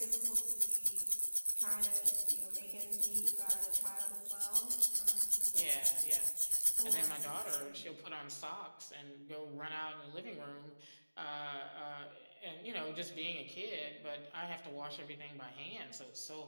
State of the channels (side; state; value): both; inverted; correlation -1.00